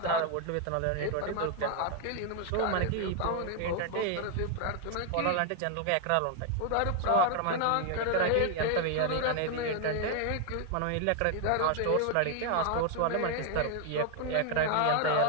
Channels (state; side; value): different; both; correlation 0.00